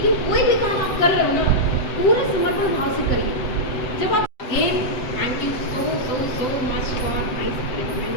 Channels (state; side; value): late; right; 7.8 ms